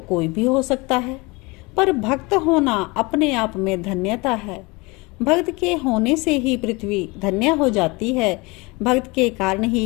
कोई भी हो सकता है, पर भक्त होना अपने आप में धन्यता है। भक्त के होने से ही पृथ्वी धन्य हो जाती है। भक्त के कारण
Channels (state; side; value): quieter; right; 25.6 dB